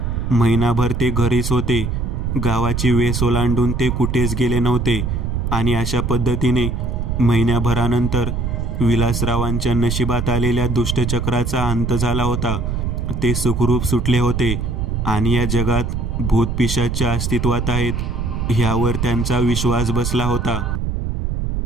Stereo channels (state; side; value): noise; right; rumble, 1 dB below the sound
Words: महिनाभर ते घरीच होते. गावाची वेस ओलांडून ते कुठेच गेले नव्हते आणि अशा पद्धतीने महिन्याभरानंतर विलासरावांच्या नशिबात आलेल्या दुष्टचक्राचा अंत झाला होता. ते सुखरूप सुटले होते आणि या जगात भूतपिशाच्या अस्तित्वात आहेत ह्यावर त्यांचा विश्वास बसला होता.